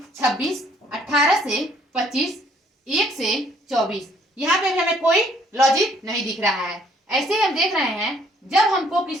26, 18 से 25, 1 से 24। यहाँ पे भी हमें कोई लॉजिक नहीं दिख रहा है। ऐसे ही हम देख रहे हैं जब हमको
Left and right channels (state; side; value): normal; both; correlation 0.64